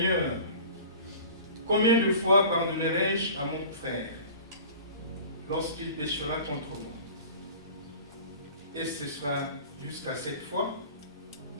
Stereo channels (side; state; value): both; inverted; correlation -0.41